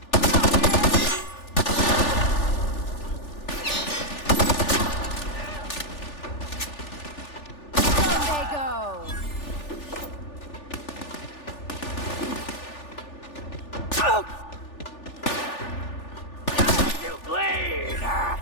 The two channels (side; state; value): right; late; 3.4 ms